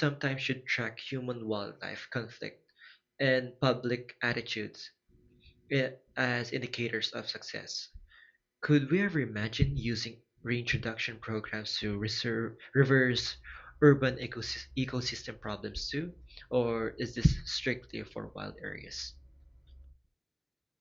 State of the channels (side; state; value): both; identical; correlation 1.00